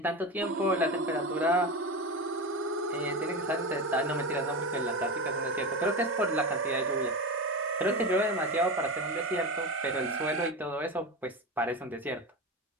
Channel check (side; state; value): both; normal; correlation 0.21